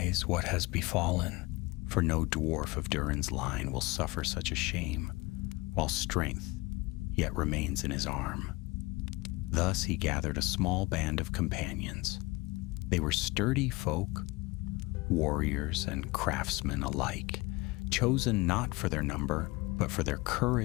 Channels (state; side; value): quieter; right; 23.2 dB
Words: what has befallen, for no dwarf of Durin's line will suffer such a shame, while strength yet remains in his arm. Thus he gathered a small band of companions. They were sturdy folk, warriors and craftsmen alike, chosen not for their number, but for their